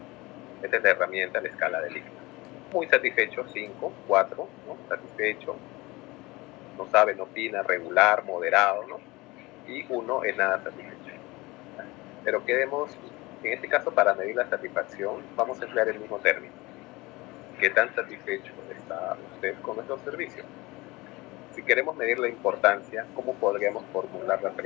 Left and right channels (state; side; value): quieter; right; 22.2 dB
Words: Esta es la herramienta, la escala de Likert. Muy satisfecho, 5, 4, ¿no? Satisfecho, no sabe, no opina, regular, moderado, ¿no? Y 1 es nada satisfecho. Pero en este caso, para medir la satisfacción, vamos a emplear el mismo término. ¿Qué tan satisfecho está usted con nuestro servicio? Si queremos medir la importancia, ¿cómo podríamos formular la